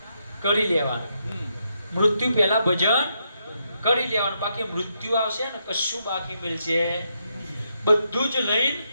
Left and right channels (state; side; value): inverted; both; correlation -0.80